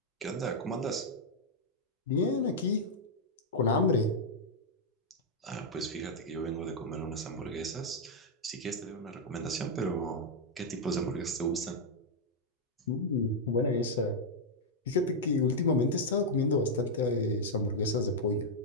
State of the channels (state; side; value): normal; both; correlation -0.03